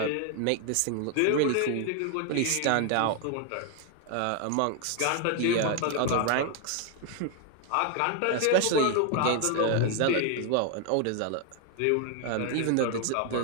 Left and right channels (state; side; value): different; both; correlation 0.00